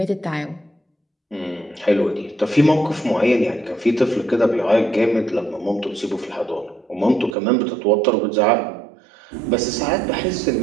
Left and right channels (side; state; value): left; drops out; at 7.4 s